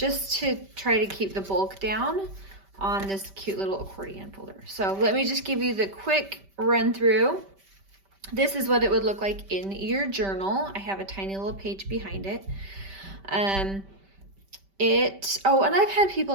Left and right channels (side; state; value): left; late; 5.1 ms